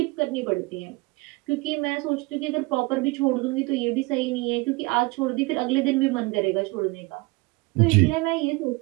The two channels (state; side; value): quieter; left; 24.5 dB